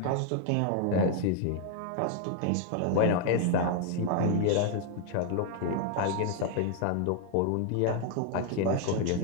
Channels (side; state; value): both; different; correlation 0.00